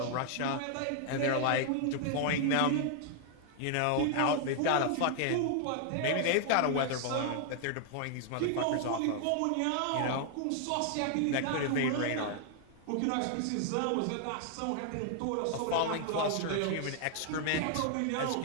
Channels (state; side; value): different; both; correlation 0.00